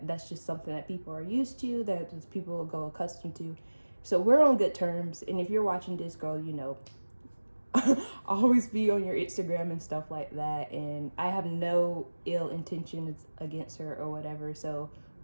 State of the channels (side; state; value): both; inverted; correlation -1.00